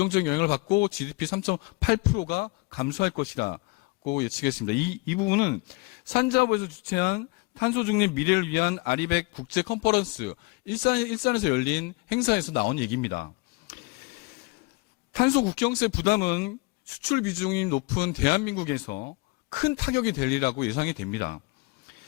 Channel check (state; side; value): quieter; right; 26.2 dB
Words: 영향을 받고 GDP 3.8%가 감소할 것이라고 예측했습니다. 이 부분은 산자부에서 주최한 탄소 중립 미래를 위한 아리백 국제 컨퍼런스 일산에서 열린 행사에서 나온 얘기입니다. 탄소 국경세 부담은 수출 비중이 높은 대한민국에서 큰 타격이 될 일이라고 예상이 됩니다.